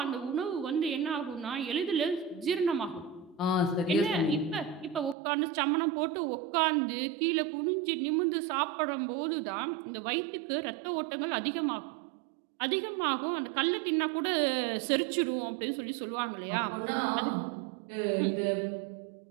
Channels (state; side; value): drops out; left; at 5.2 s